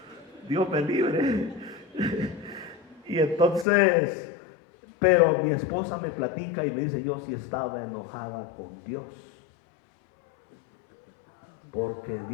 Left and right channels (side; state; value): right; drops out; at 3.7 s